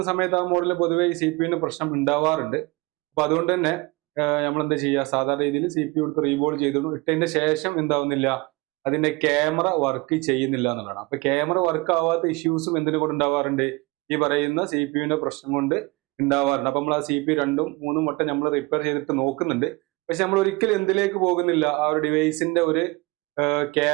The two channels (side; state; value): left; quieter; 24.5 dB